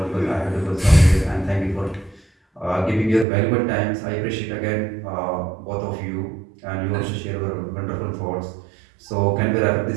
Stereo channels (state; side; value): drops out; left; at 3.2 s